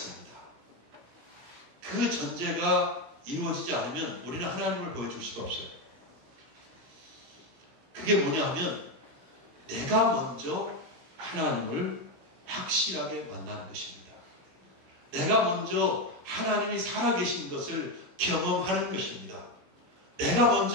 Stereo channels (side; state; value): left; late; 17 ms